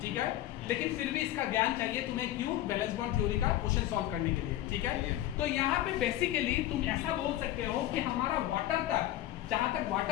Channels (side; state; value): right; quieter; 13.9 dB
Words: ठीक है। लेकिन फिर भी इसका ज्ञान चाहिए तुम्हें, क्यों? बैलेंस बॉन्ड थ्योरी का क्वेश्चन सॉल्व करने के लिए, ठीक है। तो यहाँ पे बेसिकली तुम ऐसा बोल सकते हो कि हमारा वाटर तक, जहां तक